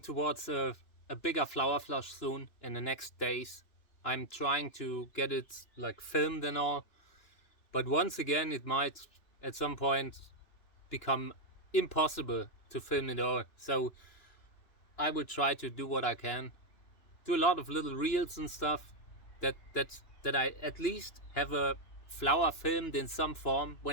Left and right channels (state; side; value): late; right; 2.9 ms